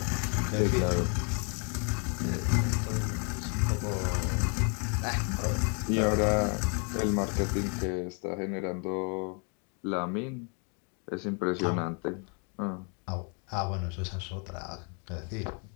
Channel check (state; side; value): quieter; right; 37.9 dB